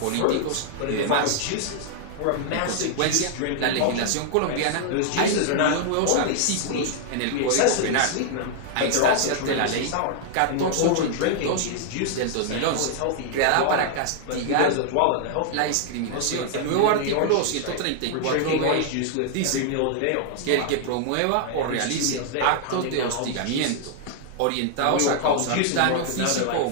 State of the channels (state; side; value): different; both; correlation -0.01